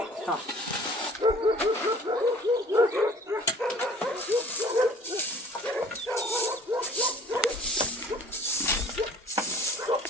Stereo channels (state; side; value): normal; both; correlation 0.51